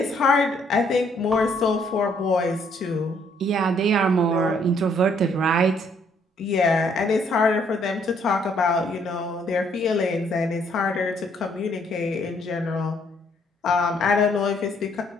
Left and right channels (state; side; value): normal; both; correlation 0.67